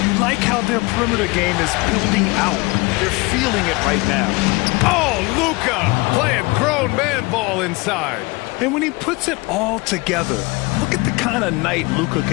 You like how their perimeter game is building out. They're feeling it right now. Oh, Luka playing grown man ball inside. And when he puts it all together, look at the kind of night Luka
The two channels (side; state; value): right; quieter; 25.0 dB